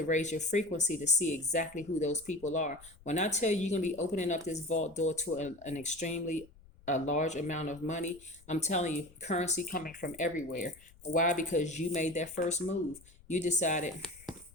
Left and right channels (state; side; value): noise; left; rumble, 24 dB below the sound